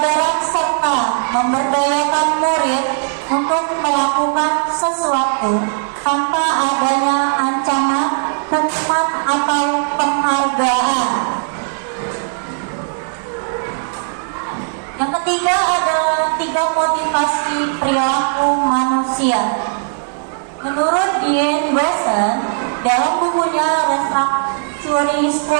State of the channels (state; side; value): silent; left; 61 dB below the other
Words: serta memberdayakan murid untuk melakukan sesuatu tanpa adanya ancaman, hukuman, atau penghargaan. Yang ketiga adalah 3 motivasi perilaku manusia. Menurut Dean Boson, dalam bukunya Restructuring